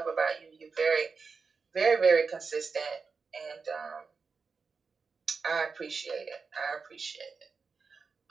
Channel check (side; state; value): left; quieter; 4.9 dB